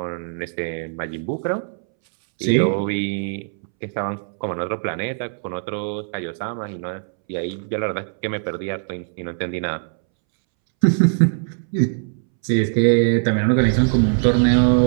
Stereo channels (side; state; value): left; silent; 65 dB below the other